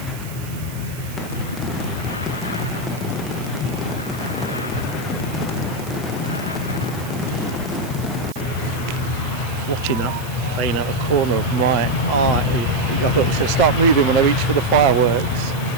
Watching that plane out the corner of my eye, I thought it was going to start moving when I reached for the fireworks.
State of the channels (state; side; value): noise; right; hiss, 16 dB below the sound